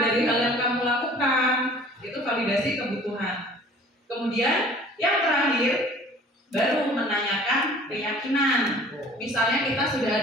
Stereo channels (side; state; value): both; normal; correlation 0.49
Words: dari hal yang kamu lakukan? Itu validasi kebutuhan. Kemudian yang terakhir baru menanyakan keyakinan. Misalnya kita sudah